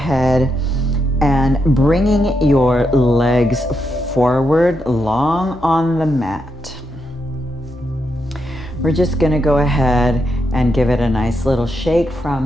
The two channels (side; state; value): both; normal; correlation 0.82